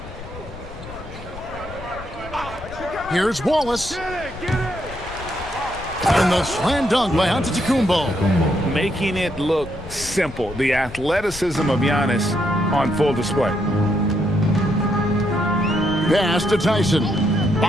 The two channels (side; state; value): left; noise; rumble, 14 dB below the sound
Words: Here's Wallace. And the slam dunk by Antetokounmpo. Making it look simple. The athleticism of Giannis on full display. Pass to Tyson.